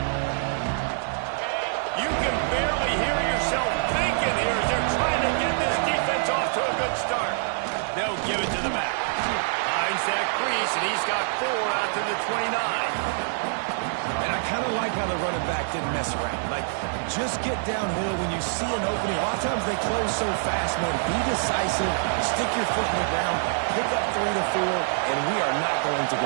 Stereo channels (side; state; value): left; silent; digital silence